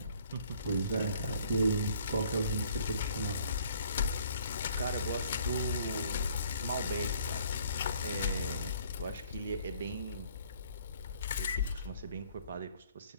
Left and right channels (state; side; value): inverted; both; correlation -0.58